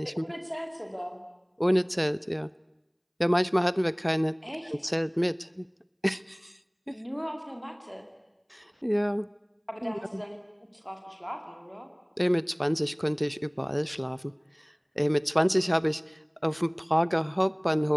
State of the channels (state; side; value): identical; both; correlation 1.00